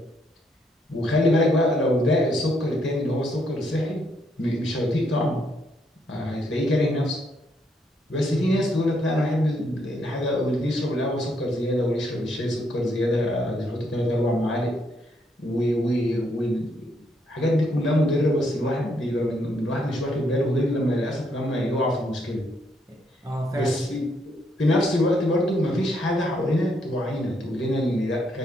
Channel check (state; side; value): normal; both; correlation 0.74